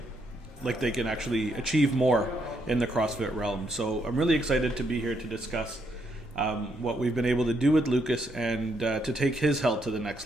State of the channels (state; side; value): normal; both; correlation 0.76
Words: like they can actually achieve more in the CrossFit realm. So I'm really excited to be here to discuss what we've been able to do with Lucas and to take his health to the next